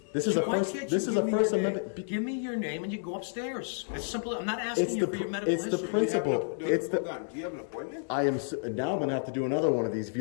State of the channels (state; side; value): silent; right; digital silence